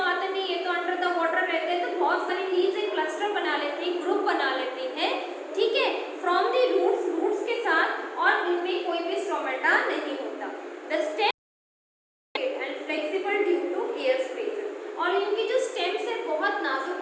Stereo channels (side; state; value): both; identical; correlation 1.00